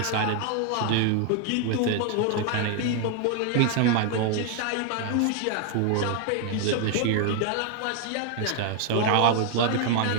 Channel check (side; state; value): both; different; correlation 0.01